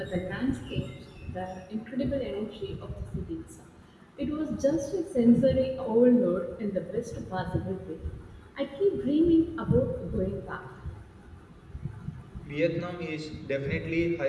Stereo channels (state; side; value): identical; both; correlation 1.00